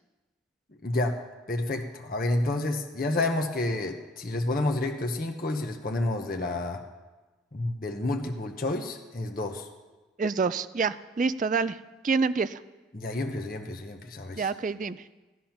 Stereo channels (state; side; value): normal; both; correlation 0.53